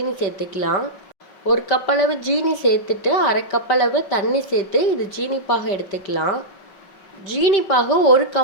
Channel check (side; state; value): right; late; 5.1 ms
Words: சேர்த்துக்கலாம். 1 கப் அளவு ஜீனி சேர்த்துட்டு 1/2 கப் அளவு தண்ணி சேர்த்து இது ஜீனி பாகு எடுத்துக்கலாம். ஜீனி பாகு ஒரு